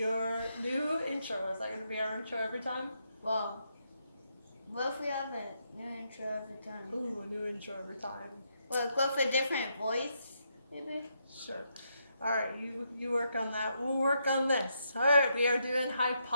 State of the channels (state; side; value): inverted; both; correlation -0.79